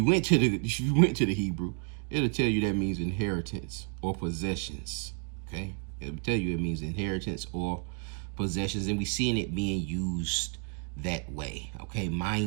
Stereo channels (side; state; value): left; quieter; 39.9 dB